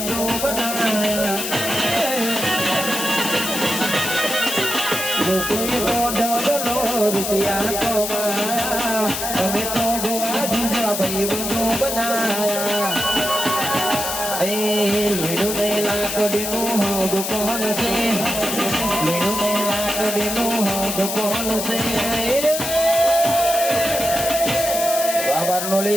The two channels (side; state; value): left; noise; hiss, 3 dB below the sound